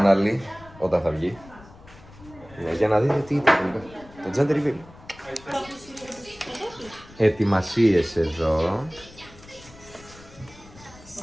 όταν θα βγει για να δείτε τι ήταν το gender reveal. Ετοιμασίες εδώ.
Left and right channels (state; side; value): noise; left; rumble, 21 dB below the sound